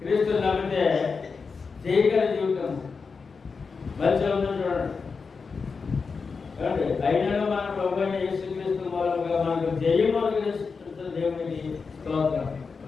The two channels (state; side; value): quieter; right; 5.0 dB